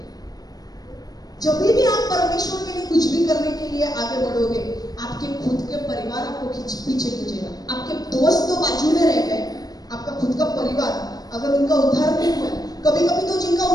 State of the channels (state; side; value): late; right; 0.19 ms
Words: जब भी आप परमेश्वर के लिए कुछ भी करने के लिए आगे बढ़ोगे, आपके खुद के परिवार आपको पीछे खींचेगा। आपके दोस्त तो बाजू में रह गए, आपका खुद का परिवार अगर उनका उद्धार नहीं हुआ, कभी कभी तो जिनका